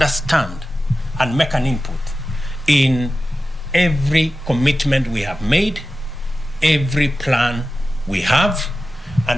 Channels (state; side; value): normal; both; correlation 0.94